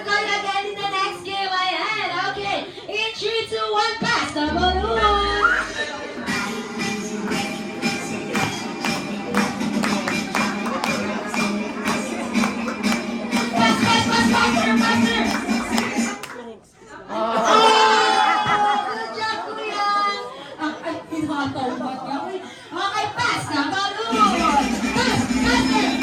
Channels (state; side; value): identical; both; correlation 1.00